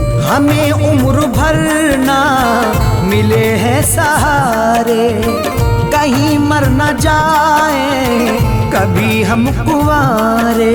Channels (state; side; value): identical; both; correlation 1.00